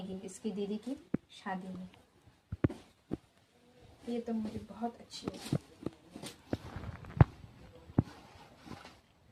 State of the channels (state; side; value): identical; both; correlation 1.00